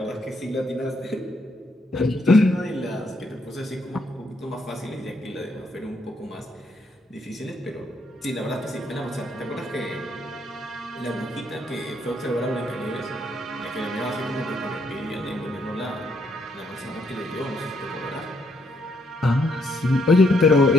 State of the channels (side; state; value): both; normal; correlation 0.73